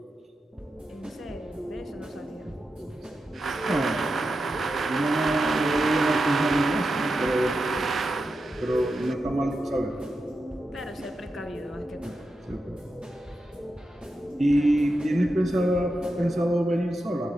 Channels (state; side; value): normal; both; correlation 0.89